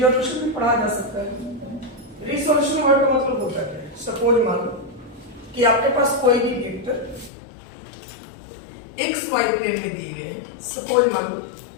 भी पढ़ा जा सकता है। रिसोल्यूशन वर्ड का मतलब होता है, सपोज मान लो कि आपके पास कोई भी वेक्टर एक्स वाई प्लेन में दिए गए हैं। सपोज मान लो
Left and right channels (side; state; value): right; drops out; at 7.3 s